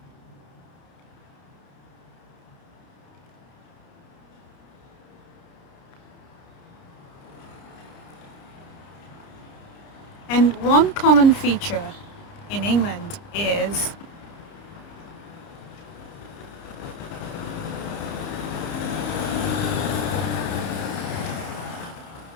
And one common feature in England is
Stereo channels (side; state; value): right; late; 30 ms